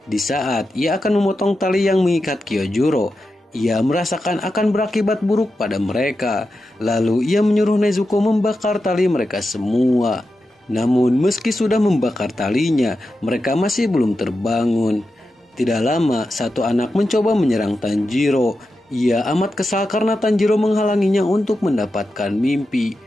Di saat ia akan memotong tali yang mengikat Kyojuro, ia merasakan akan berakibat buruk pada mereka. Lalu ia menyuruh Nezuko membakar tali mereka semua. Namun meski sudah membakar talinya, mereka masih belum terbangun. Tidak lama, satu anak mencoba menyerang Tanjiro. Ia amat kesal karena Tanjiro menghalanginya untuk mendapatkan mimpi.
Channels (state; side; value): normal; both; correlation 0.90